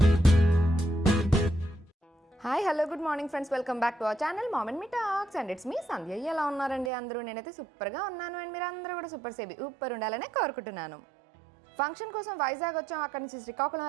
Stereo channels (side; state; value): left; drops out; at 6.9 s